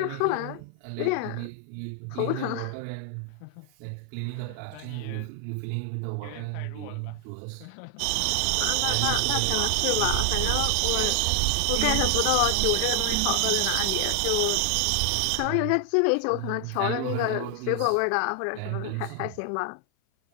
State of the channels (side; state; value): both; different; correlation 0.00